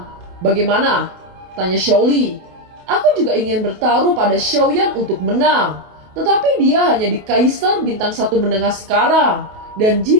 Bagaimana?" tanya Xiaoli. "Aku juga ingin bertaruh pada Xiaoyan untuk menang. Tetapi dia hanya di Kaisar Bintang 1 menengah sekarang. Dan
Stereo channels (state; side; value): late; left; 28 ms